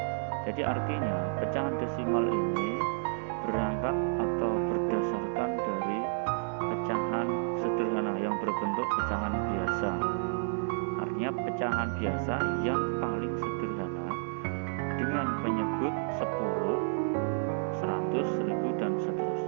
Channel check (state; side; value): silent; left; digital silence